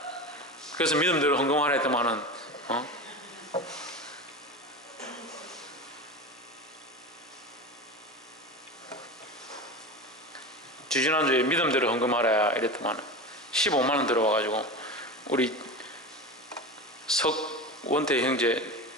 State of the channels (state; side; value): normal; both; correlation 0.26